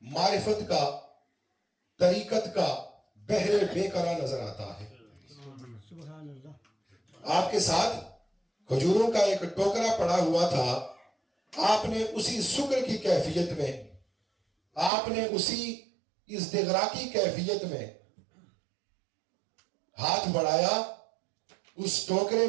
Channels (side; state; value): left; drops out; at 14.9 s